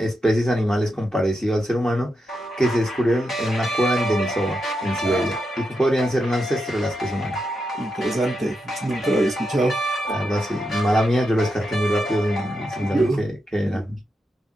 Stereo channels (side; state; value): both; normal; correlation 0.85